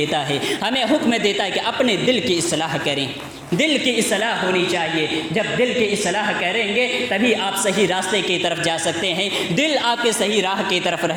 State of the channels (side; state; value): both; identical; correlation 1.00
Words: ہے کہ اپنے دل کی اصلاح کریں۔ دل کی اصلاح ہونی چاہیے۔ جب دل کی اصلاح کریں گے تبھی آپ صحیح راستے کی طرف جا سکتے ہیں، دل آپ کے صحیح راہ کی طرف